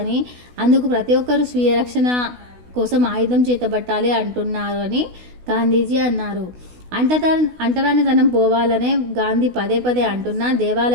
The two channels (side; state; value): left; late; 16 ms